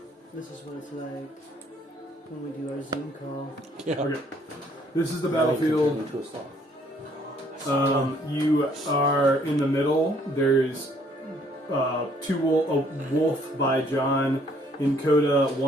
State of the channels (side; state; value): both; normal; correlation 0.63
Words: This is what it's like when we do our Zoom call. Yeah. Okay. This is the Now you can turn battlefield. into a sloth. You are in the middle. There's a wolf by John in Coda,